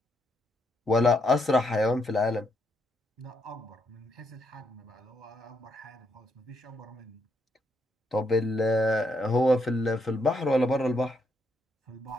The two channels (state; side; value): normal; both; correlation 0.77